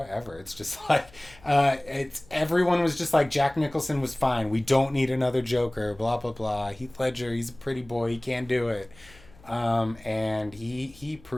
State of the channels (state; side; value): noise; left; hum, 25 dB below the sound